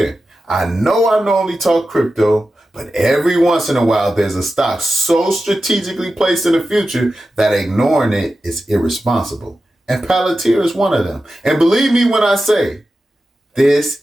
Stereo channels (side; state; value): both; normal; correlation 0.92